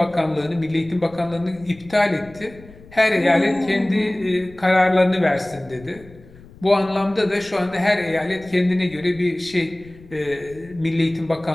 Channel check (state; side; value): noise; left; rumble, 22 dB below the sound